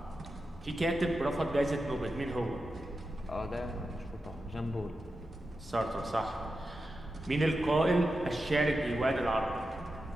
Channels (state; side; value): normal; both; correlation 0.90